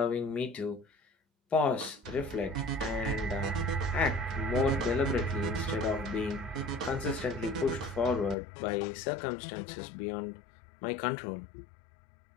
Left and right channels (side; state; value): right; drops out; at 8.3 s